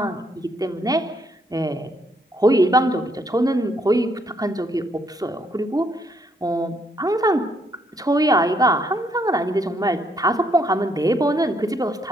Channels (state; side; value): normal; both; correlation 0.72